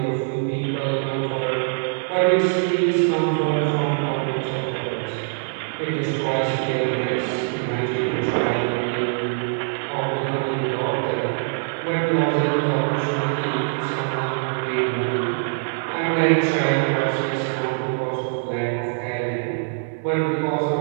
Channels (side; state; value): left; silent; digital silence